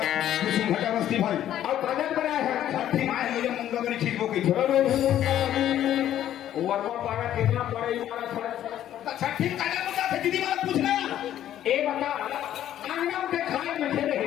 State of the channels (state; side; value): quieter; right; 11.6 dB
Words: कुसुम घटा बस्ती भाई और कागज बनाए हैं छठी माए मुझे मुंगा बनी ठीक हो गई। वर्मा पारा कितना पड़े हमारा छठी कागज मुद्दा थे दीदी वाला पूछना ए बता आंगन के खाए में